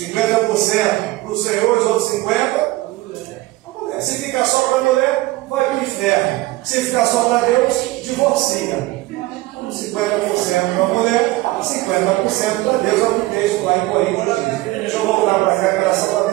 para o Senhor, os outros 50% para a mulher. Se ficar só para a mulher, vai para o inferno. Se ficar só para Deus, divorcia. 50% para a mulher, 50% para Deus, é o que o texto lá em Coríntios diz. Deixa eu voltar para cá, que era só para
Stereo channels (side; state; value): left; quieter; 18.8 dB